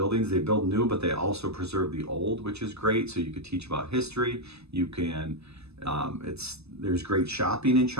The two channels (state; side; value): late; left; 0.79 ms